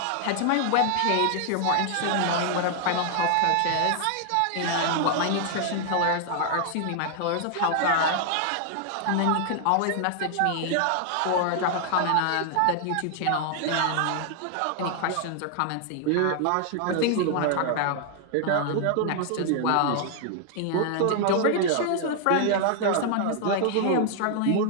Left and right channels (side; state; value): both; different; correlation 0.00